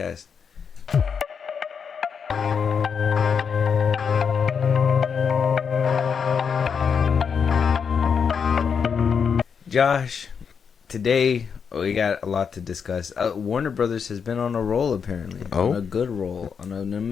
Josh, today we got a lot to discuss. Warner Brothers has been on a roll, apparently. Oh? On a good roll. On an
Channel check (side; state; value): right; quieter; 6.5 dB